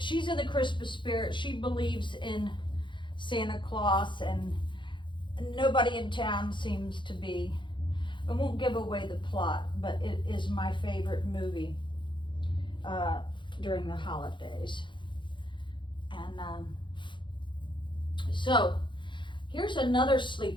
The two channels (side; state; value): right; late; 0.23 ms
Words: in the Christmas spirit. She believes in Santa Claus, and nobody in town seems to be. I won't give away the plot, but it is my favorite movie during the holidays. And so here's another